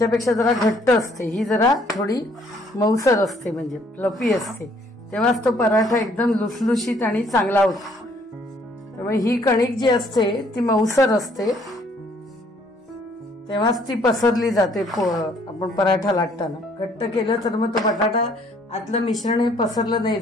जरा घट्ट असते, ही जरा थोडी मऊसर असते, म्हणजे फ्लफी असते. तेव्हाच तो पराठा एकदम लुसलुशीत आणि चांगला होतो. त्यामुळे ही कणिक जी असते ती मऊसर असते, तेव्हाच ती पसरली जाते. आपण पराठा लाटताना घट्ट केलं तर मग तो बटाटा आतलं मिश्रण हे पसरलं नाही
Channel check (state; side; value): normal; both; correlation 0.63